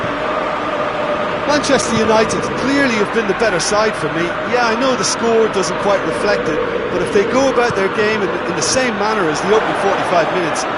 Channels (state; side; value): identical; both; correlation 1.00